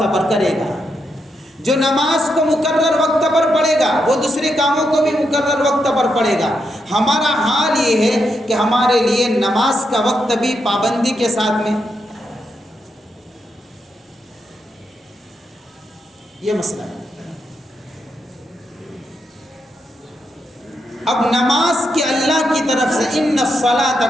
پر کرے گا۔ جو نماز کو مقرر وقت پر پڑھے گا وہ دوسرے کاموں کو بھی مقرر وقت پر پڑھے گا۔ ہمارا حال یہ ہے کہ ہمارے لیے نماز کا وقت بھی پابندی کے ساتھ میں، یہ مسئلہ ہے۔ اب نماز کے اللہ کی طرف سے ان الصلاۃ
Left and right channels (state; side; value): normal; both; correlation 0.82